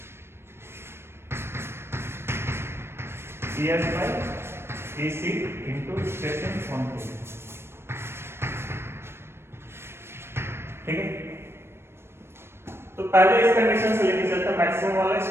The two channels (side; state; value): left; late; 0.12 ms